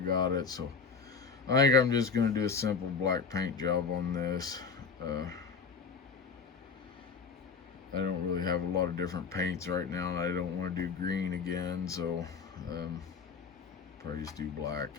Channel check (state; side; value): quieter; right; 5.3 dB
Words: it, so I think I'm just going to do a simple black paint job on this. I don't really have a lot of different paints right now, and I don't want to do green again, so probably just do black.